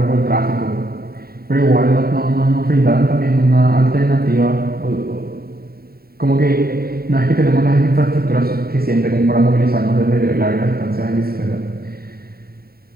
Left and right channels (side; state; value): left; late; 0.45 ms